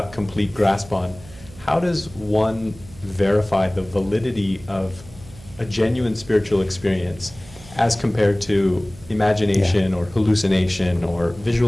complete grasp on, how does one verify the validity of a genuine spiritual experience as compared to imagination or hallucination or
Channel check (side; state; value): right; noise; hum, 20 dB below the sound